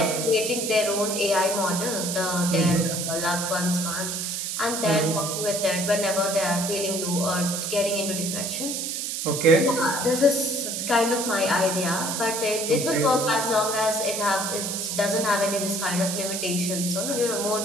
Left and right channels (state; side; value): noise; right; hiss, 3 dB below the sound